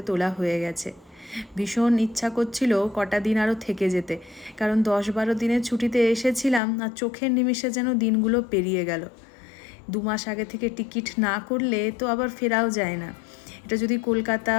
তোলা হয়ে গেছে। ভীষণ ইচ্ছা করছিল কটা দিন আরও থেকে যেতে, কারণ 10-12 দিনের ছুটিতে এসেছিলাম আর চোখের নিমিষে যেন দিনগুলো পেরিয়ে গেল। 2 মাস আগে থেকে টিকিট না করলে তো আবার ফেরাও যায় না। এটা যদি কলকাতা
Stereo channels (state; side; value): drops out; right; at 6.6 s